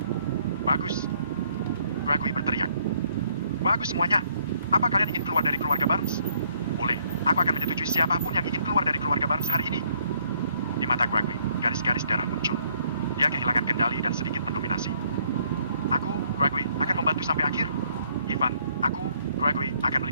Bagus. Gregory berteriak. Bagus semuanya. Apa kalian ingin keluar dari keluarga Barnes? Boleh, aku akan menyetujui siapapun yang ingin keluar dari keluarga Barnes hari ini. Di mata Gregory, garis-garis darah muncul. Dia kehilangan kendali dan sedikit mendominasi. Aku, Gregory, akan membantu sampai akhir. Ivan, aku, Gregory, akan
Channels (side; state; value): both; inverted; correlation -0.66